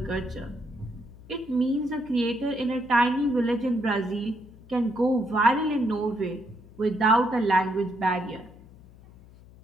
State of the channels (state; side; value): noise; left; hum, 22 dB below the sound